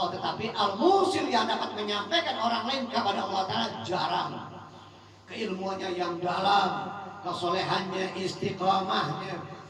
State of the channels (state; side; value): identical; both; correlation 1.00